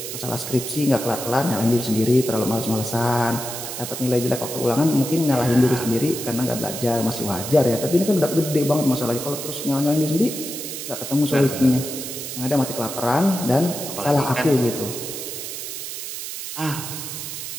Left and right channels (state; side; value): noise; right; hiss, 7 dB below the sound